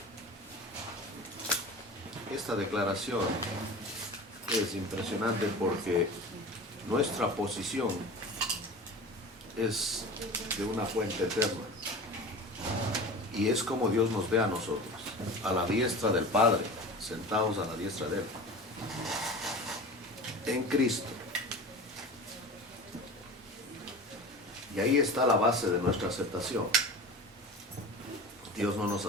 Esta declaración es impresionante porque nuestra posición es de una fuente eterna y es como Dios nos ve a nosotros, a la diestra del Padre, sentados a la diestra de Él, en Cristo. Y ahí está la base de nuestra aceptación. Dios no nos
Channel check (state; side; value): normal; both; correlation 0.35